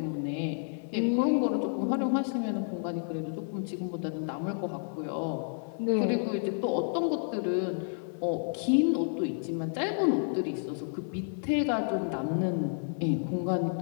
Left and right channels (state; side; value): silent; right; digital silence